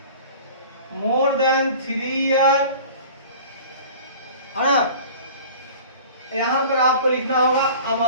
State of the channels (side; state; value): both; inverted; correlation -0.42